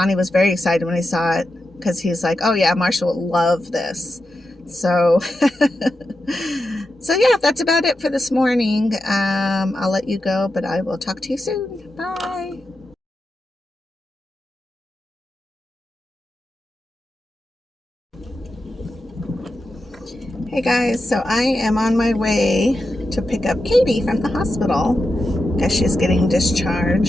was very excited when he saw it because he's like, oh yeah, Marshall will love this. So, so yeah, that's about it for this morning. I'll let you go, but I will talk to you soon. Bye. Hey guys, so I am on my way to pick up Katie from the hospital because she's getting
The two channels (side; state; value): both; normal; correlation 0.89